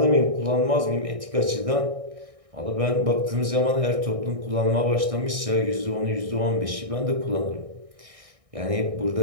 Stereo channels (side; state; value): left; late; 1.6 ms